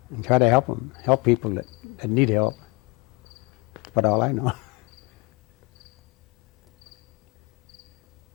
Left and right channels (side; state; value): right; quieter; 24.7 dB